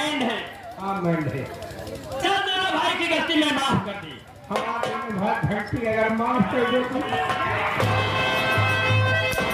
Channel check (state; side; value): identical; both; correlation 1.00